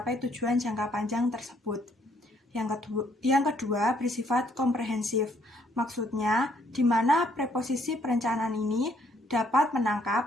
tujuan jangka panjang tersebut. Yang kedua bersifat komprehensif, maksudnya di mana preposisi perencanaan ini dapat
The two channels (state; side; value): normal; both; correlation 0.68